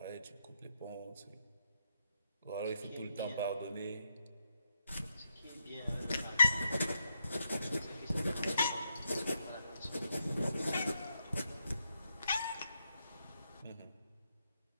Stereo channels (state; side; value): inverted; both; correlation -0.80